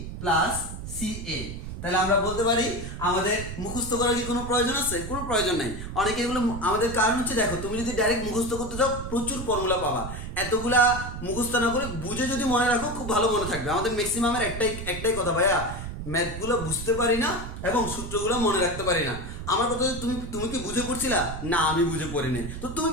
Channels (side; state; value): right; noise; rumble, 8 dB below the sound